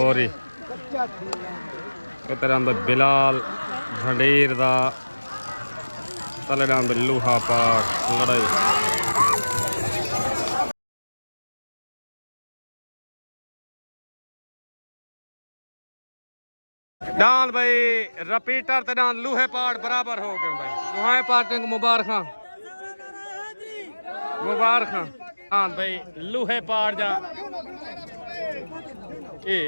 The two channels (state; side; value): inverted; both; correlation -1.00